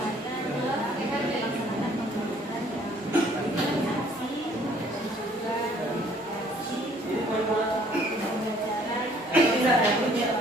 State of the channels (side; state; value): both; normal; correlation 0.59